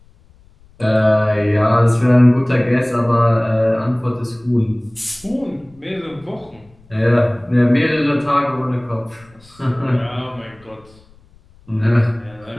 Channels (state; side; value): noise; left; rumble, 29 dB below the sound